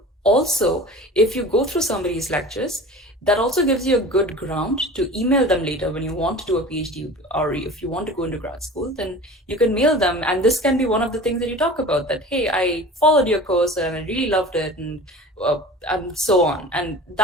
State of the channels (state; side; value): normal; both; correlation 0.38